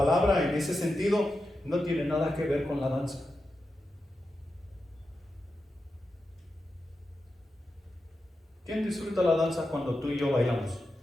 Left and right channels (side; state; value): both; normal; correlation 0.89